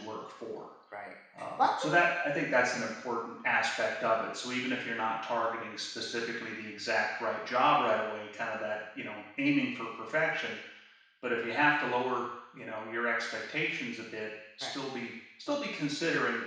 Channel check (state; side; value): identical; both; correlation 1.00